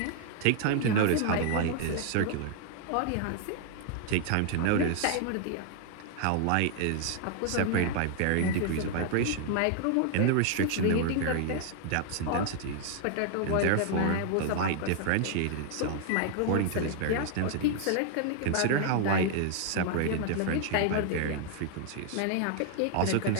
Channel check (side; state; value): both; different; correlation 0.00